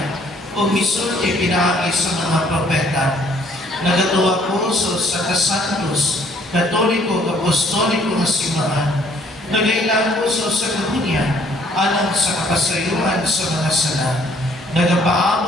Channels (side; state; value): both; normal; correlation 0.62